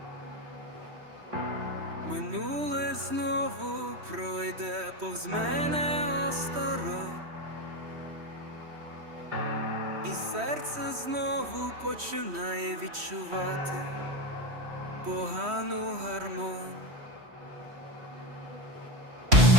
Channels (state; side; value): late; left; 3.1 ms